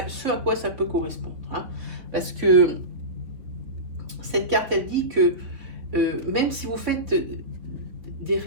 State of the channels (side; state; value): left; late; 3.6 ms